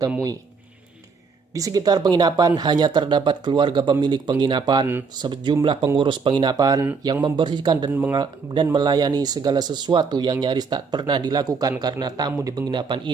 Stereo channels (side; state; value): left; quieter; 5.0 dB